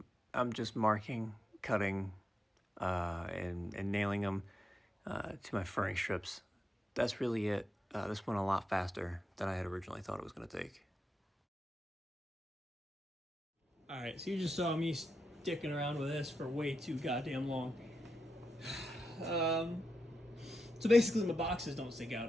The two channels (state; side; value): normal; both; correlation 0.87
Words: just marking, cutting, and nailing them to my furring strips. That's really it. This went a lot faster than I had originally thought it was going to take. All right, so you just saw me sticking around with this for way too goddamn long. So basically my boxes don't stick